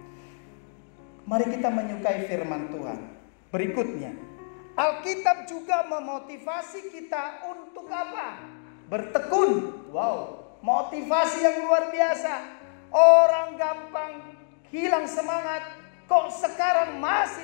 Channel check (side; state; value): right; silent; digital silence